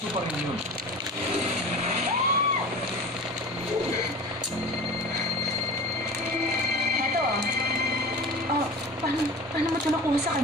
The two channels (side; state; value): both; normal; correlation 0.35